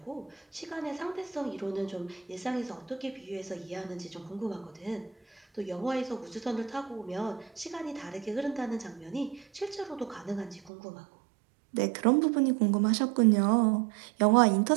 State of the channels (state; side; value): drops out; left; at 10.7 s